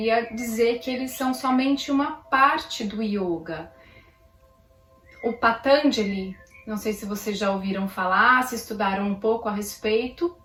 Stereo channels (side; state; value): both; identical; correlation 1.00